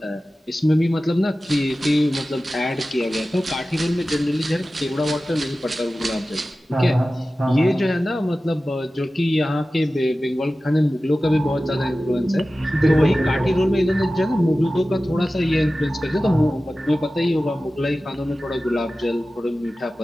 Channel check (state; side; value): normal; both; correlation 0.96